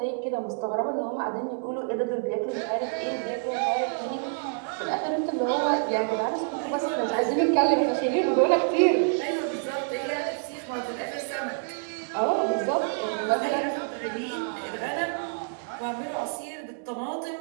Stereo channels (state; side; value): silent; left; digital silence